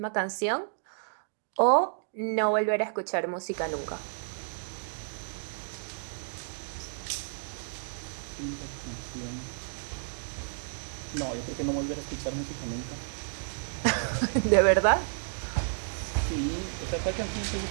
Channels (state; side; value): silent; left; digital silence